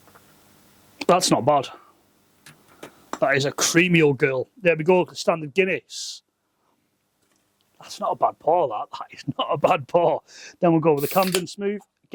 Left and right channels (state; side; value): identical; both; correlation 1.00